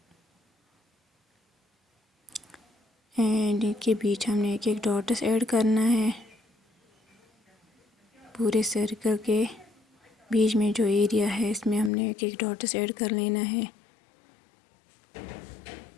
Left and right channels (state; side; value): drops out; right; at 11.9 s